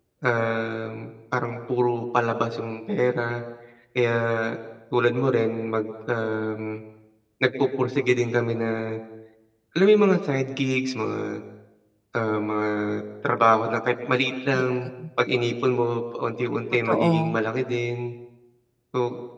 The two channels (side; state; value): both; identical; correlation 1.00